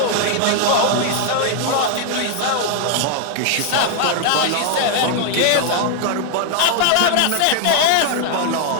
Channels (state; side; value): different; both; correlation 0.00